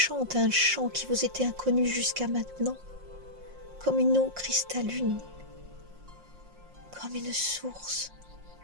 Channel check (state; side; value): late; left; 5.6 ms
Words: un chant qui vous était inconnu jusqu'à maintenant, comme une eau cristalline, comme une source